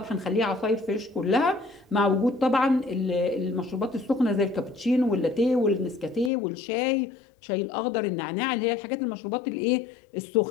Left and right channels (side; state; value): right; drops out; at 6.3 s